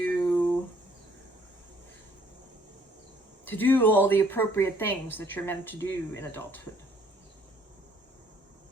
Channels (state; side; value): normal; both; correlation 0.62